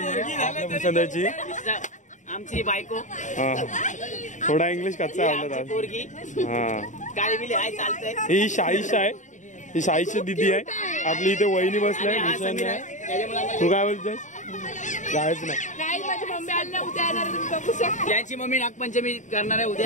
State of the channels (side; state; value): right; late; 0.36 ms